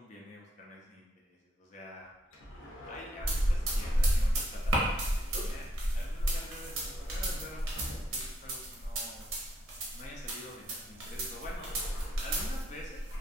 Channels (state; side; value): normal; both; correlation 0.74